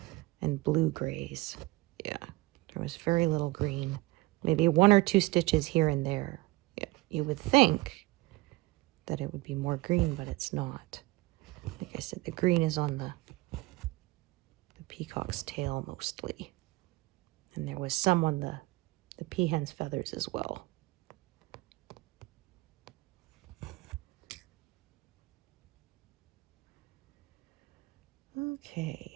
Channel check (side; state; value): left; quieter; 21.4 dB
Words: and blue grays. Yeah, there was very little green. Maybe 1 or 2 stitches here and there. Yeah, you would think that it would be more green, but it's not. Like I said, the green is on the peacock's tail mostly. And there was some on the peahen's feathers as well.